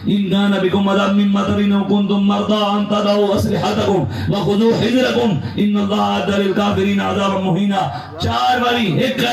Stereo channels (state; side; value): identical; both; correlation 1.00